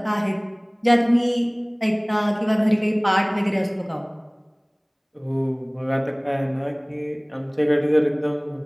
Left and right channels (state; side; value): identical; both; correlation 1.00